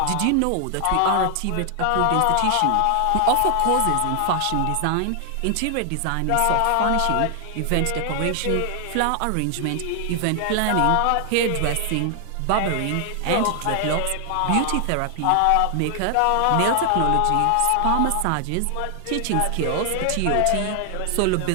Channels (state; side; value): different; both; correlation 0.00